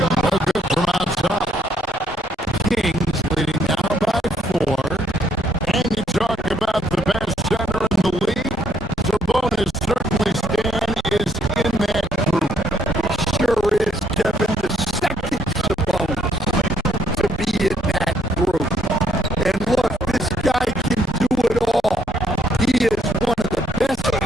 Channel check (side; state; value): both; normal; correlation 0.70